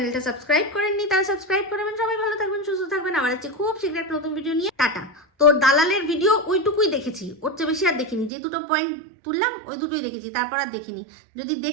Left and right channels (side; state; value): left; drops out; at 8.3 s